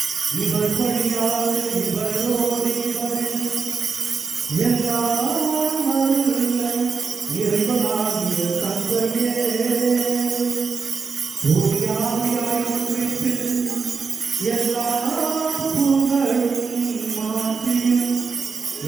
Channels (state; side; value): quieter; left; 5.1 dB